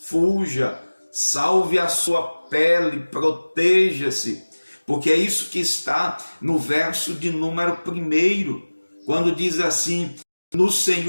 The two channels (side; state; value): both; inverted; correlation -1.00